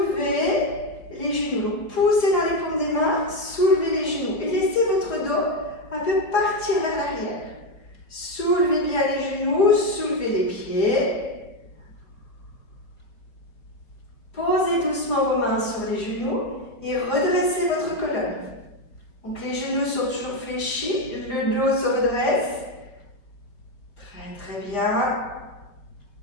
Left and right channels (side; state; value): right; late; 4.7 ms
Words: les genoux. Donc, poussez dans les paumes des mains, soulevez les genoux et laissez votre dos un peu partir vers l'arrière. Soulevez bien les genoux, soulevez les pieds. Posez doucement vos mains sur les genoux et redressez votre colonne. Donc les genoux sont toujours fléchis, le dos se redresse. Très très bien.